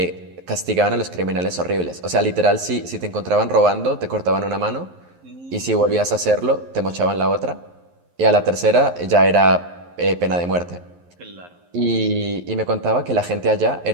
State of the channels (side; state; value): left; late; 11 ms